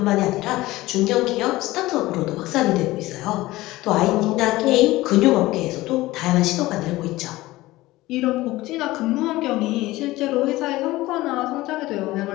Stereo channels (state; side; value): quieter; right; 18.3 dB